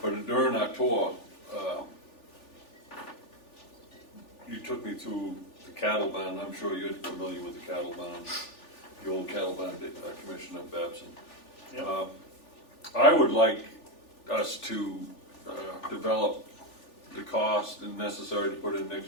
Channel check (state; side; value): late; right; 3.4 ms